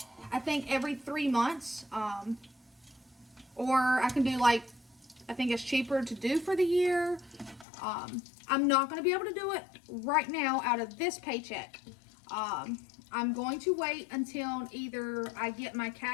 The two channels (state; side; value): drops out; right; at 7.7 s